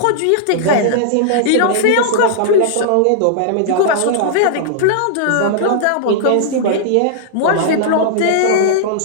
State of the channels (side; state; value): both; different; correlation -0.02